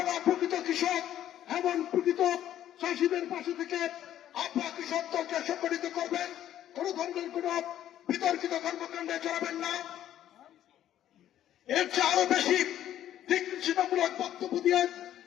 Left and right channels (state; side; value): quieter; right; 11.7 dB